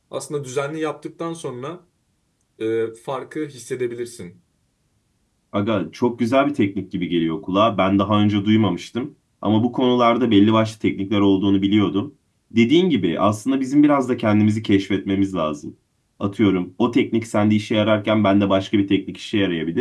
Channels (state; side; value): identical; both; correlation 1.00